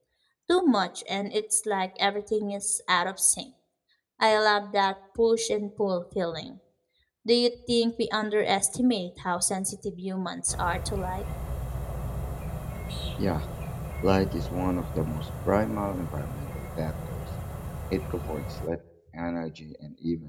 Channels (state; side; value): identical; both; correlation 1.00